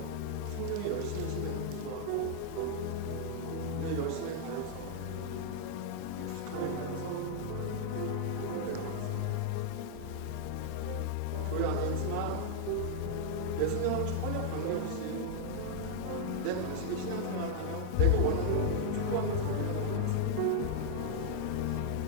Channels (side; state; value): both; different; correlation -0.01